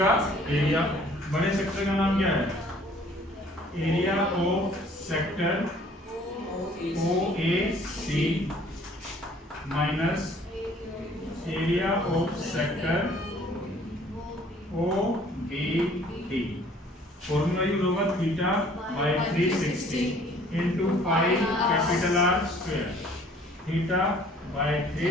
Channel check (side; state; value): both; normal; correlation 0.55